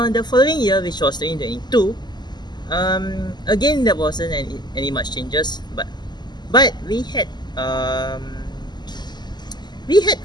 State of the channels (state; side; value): late; right; 0.21 ms